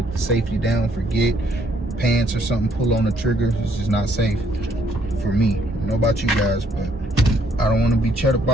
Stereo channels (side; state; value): both; normal; correlation 0.67